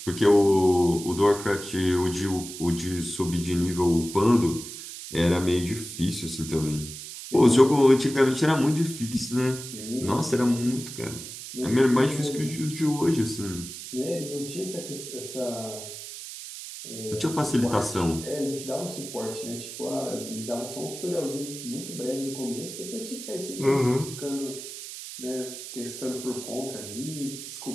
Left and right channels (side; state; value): right; noise; hiss, 11 dB below the sound